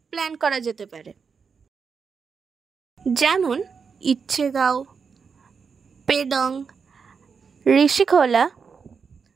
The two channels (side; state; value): left; quieter; 5.8 dB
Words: প্ল্যান করা যেতে পারে, যেমন ইচ্ছেগাঁও, পেডং, ঋষিখোলা,